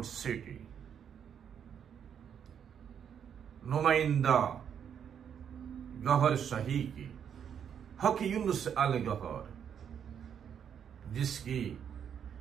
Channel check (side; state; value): left; quieter; 8.2 dB